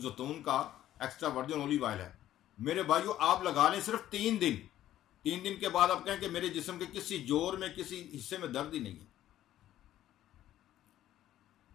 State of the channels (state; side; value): quieter; right; 12.9 dB